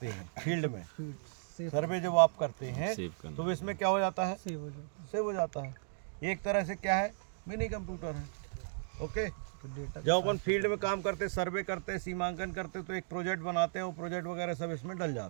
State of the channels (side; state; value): left; silent; digital silence